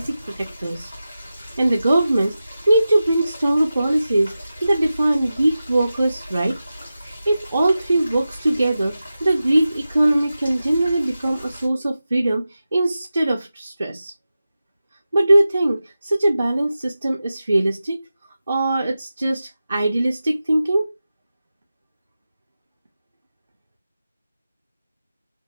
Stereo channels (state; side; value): inverted; both; correlation -0.93